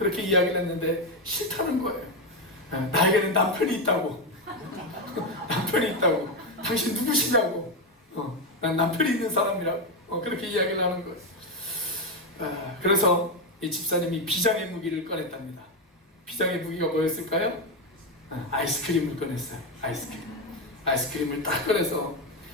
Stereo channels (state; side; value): normal; both; correlation 0.08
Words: 이야기를 했는데 싫다는 거예요. 나에게는 남편이 있다고. 남편이 있다고. 당신 누구시냐고. 난 남편이 있는 사람이라고. 그렇게 이야기를 하는 거예요. 그래서 이 집사님이 비장의 무기를 꺼냈답니다. 비장의 무기가 뭐였을까요? 아이스크림을 꺼냈어요. 아이스크림을 딱 꺼내서